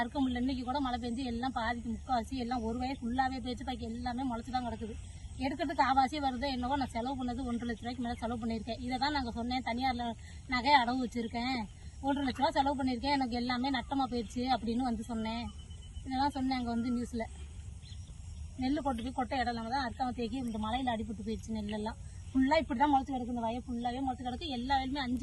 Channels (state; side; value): identical; both; correlation 1.00